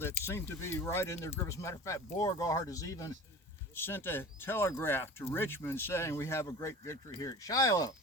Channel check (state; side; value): normal; both; correlation 0.38